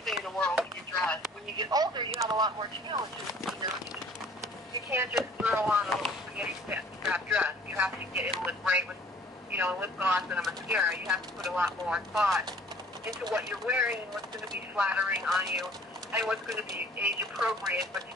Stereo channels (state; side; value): normal; both; correlation 0.53